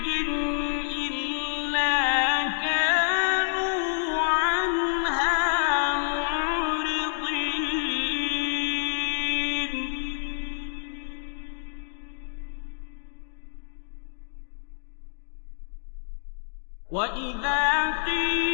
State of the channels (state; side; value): silent; right; 60 dB below the other